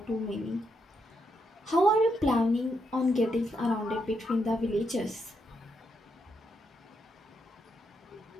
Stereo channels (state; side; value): normal; both; correlation 0.80